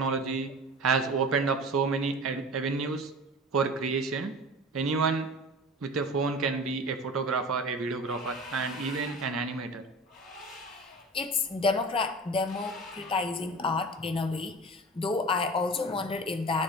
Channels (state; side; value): normal; both; correlation 0.36